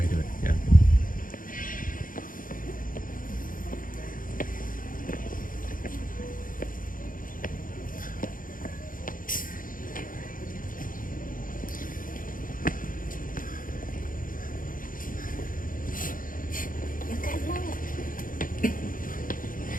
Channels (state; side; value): late; right; 0.40 ms